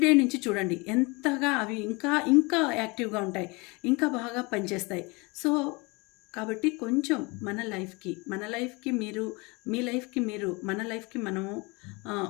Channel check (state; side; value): quieter; right; 26.9 dB